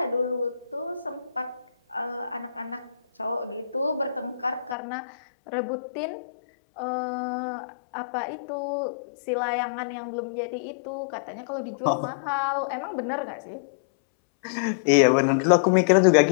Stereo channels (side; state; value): right; drops out; at 4.8 s